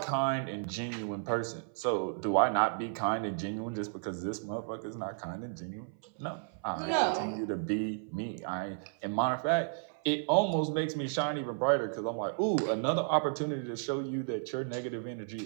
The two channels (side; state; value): left; silent; 55 dB below the other